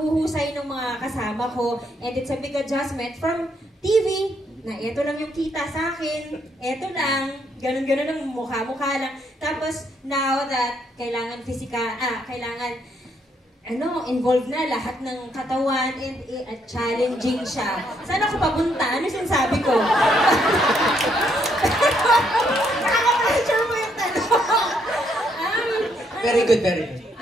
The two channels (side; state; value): both; normal; correlation 0.73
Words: ng mga kasama ko and it's a big adjustment from TV na eto lang yung kita sa akin, eto lang, ganun-ganun ang mukha-mukha lang. Tapos, now that kailangan kailangan, involved na lahat ng katawan and challenging siya. Saan ako papunta? Ano sinasabi ko? Nakaka-pressure mo yung tanong. Very good, very good.